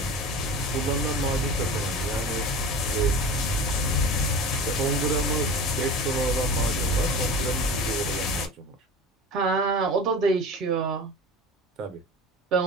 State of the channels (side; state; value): both; normal; correlation 0.33